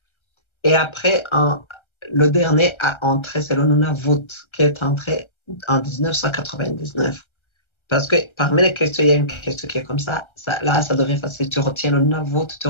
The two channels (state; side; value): late; right; 1.3 ms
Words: et après, le dernier a entré, c'est le Nunavut, qui est entré en 1999. Parce que parmi les questions, il y a une question qui est comme ça. Là, ça devient facile. Tu retiens le Nunavut, tu